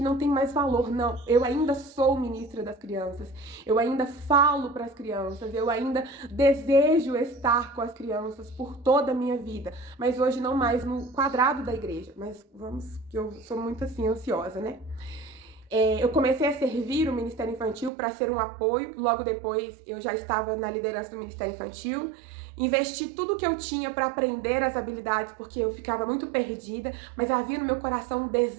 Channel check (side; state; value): left; drops out; at 17.9 s